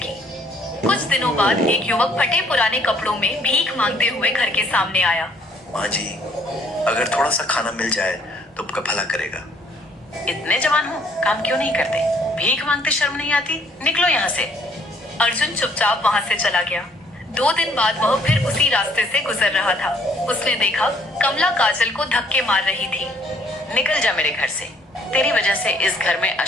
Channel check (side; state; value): both; normal; correlation 0.63